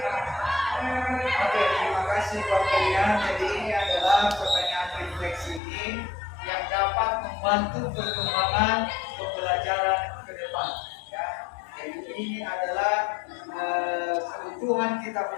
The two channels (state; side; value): drops out; right; at 5.6 s